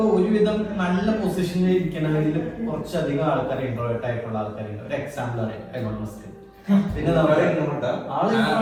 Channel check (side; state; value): both; identical; correlation 1.00